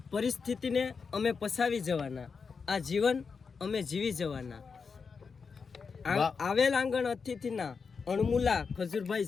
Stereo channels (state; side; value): quieter; right; 5.4 dB